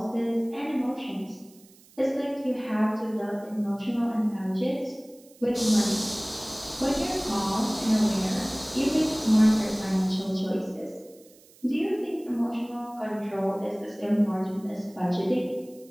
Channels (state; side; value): noise; right; hiss, 26 dB below the sound